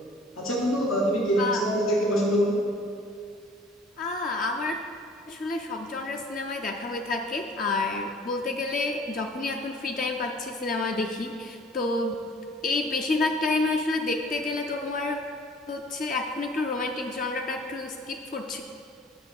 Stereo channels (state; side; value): normal; both; correlation 0.51